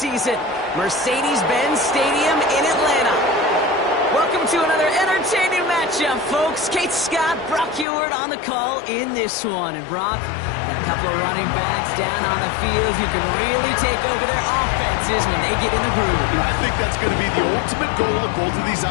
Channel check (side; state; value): right; drops out; at 7.9 s